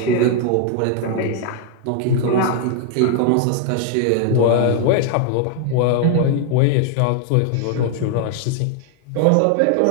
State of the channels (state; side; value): different; both; correlation 0.00